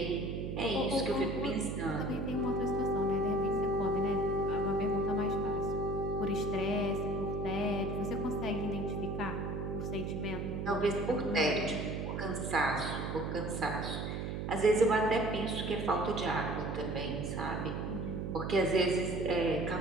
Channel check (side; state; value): right; noise; hum, 3 dB below the sound